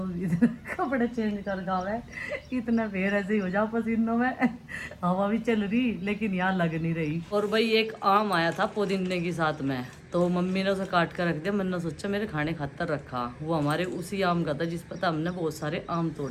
कपड़े चेंज कर गावे इतना फिर ऐसे ही हो जाओ पसीनों में। हवा भी चल रही लेकिन यहाँ लग नहीं रही। और भाई एक आम आया था पुदीने के साथ में, तो मम्मी ने उसे काट कर रख दिया। मैंने सोचा मेरे खाने खातर रखा, वो हमारे उसी आम का था जिस पर हमने बहुत सारे आम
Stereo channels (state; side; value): identical; both; correlation 1.00